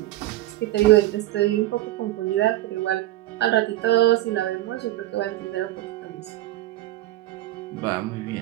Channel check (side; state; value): left; quieter; 15.8 dB